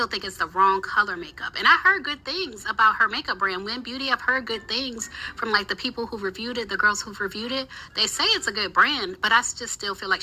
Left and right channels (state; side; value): identical; both; correlation 1.00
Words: think it's the wrong color makeup. And I heard good things about her makeup brand, Win Beauty. I've heard good things from like the people who reviewed it, the girls who've reviewed it. They say it's a good brand, but I just still feel like